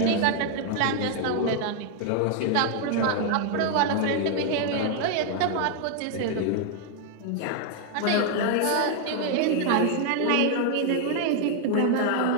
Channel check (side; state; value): both; different; correlation 0.00